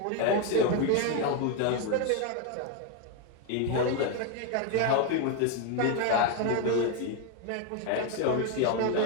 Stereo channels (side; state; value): both; different; correlation 0.01